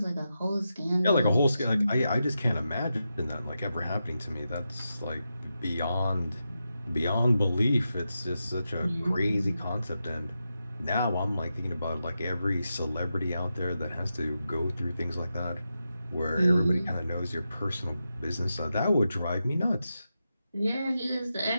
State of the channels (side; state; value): both; inverted; correlation -0.88